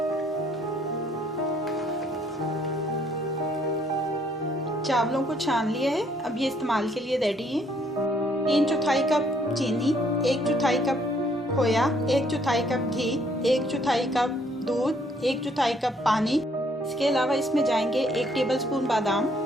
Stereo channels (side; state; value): both; normal; correlation 0.66